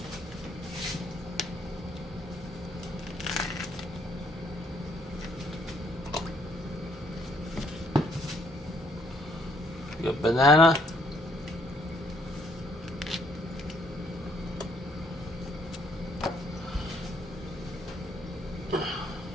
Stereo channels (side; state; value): both; normal; correlation 0.67